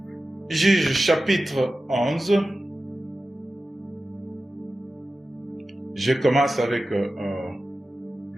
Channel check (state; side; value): normal; both; correlation 0.94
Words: Juges chapitre 11. Je commence avec